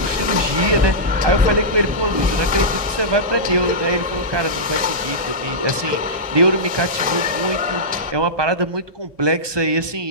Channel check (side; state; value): left; late; 1.2 ms